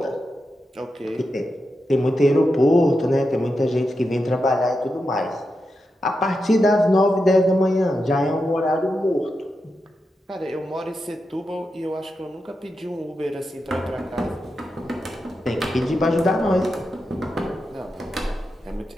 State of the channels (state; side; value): normal; both; correlation 0.88